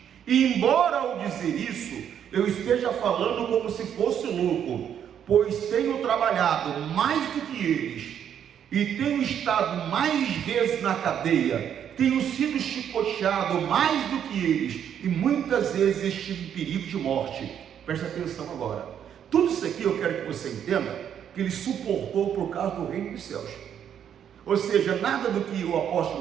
E embora ao dizer isso, eu esteja falando como se fosse louco, pois tenho trabalhado mais do que eles, e tenho estado mais vezes na cadeia, tenho sido chicoteado mais do que eles, e muitas vezes estive em perigo de morte. Preste atenção agora. Tudo isso aqui eu quero que você entenda, que ele suportou por causa do reino dos céus. Ou seja, nada do que o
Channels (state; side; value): quieter; left; 9.0 dB